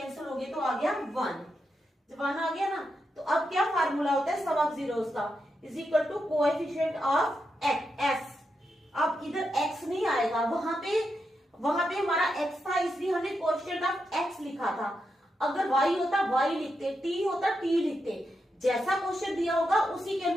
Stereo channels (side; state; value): both; normal; correlation 0.85